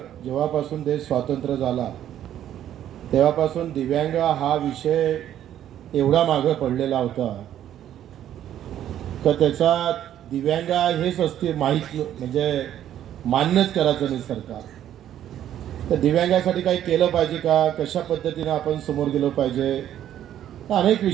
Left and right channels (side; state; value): left; quieter; 11.2 dB